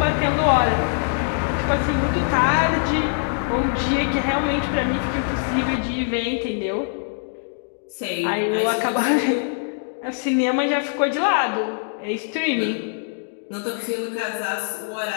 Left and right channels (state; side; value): silent; right; digital silence